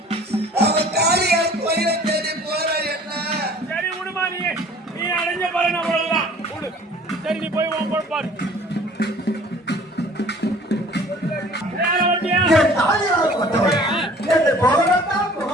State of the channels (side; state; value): both; normal; correlation 0.50